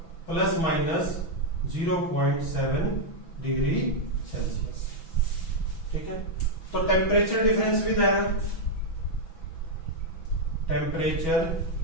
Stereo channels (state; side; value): late; right; 6.1 ms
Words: प्लस माइनस 0.7 डिग्री सेल्सियस, ठीक है। तो temperature difference with error, temperature